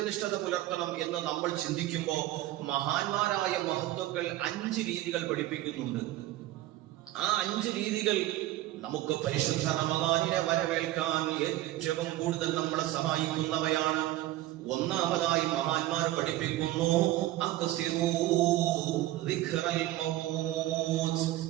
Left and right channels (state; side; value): quieter; left; 15.6 dB